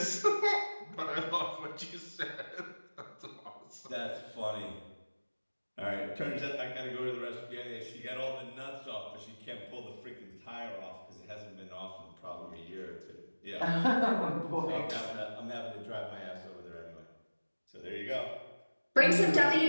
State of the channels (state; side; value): inverted; both; correlation -1.00